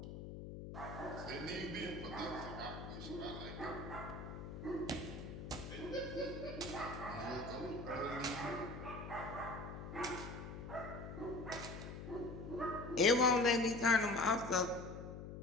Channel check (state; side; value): noise; left; hum, 9 dB below the sound